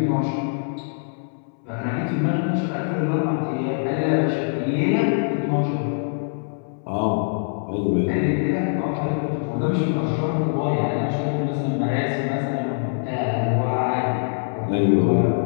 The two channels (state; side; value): silent; right; 63 dB below the other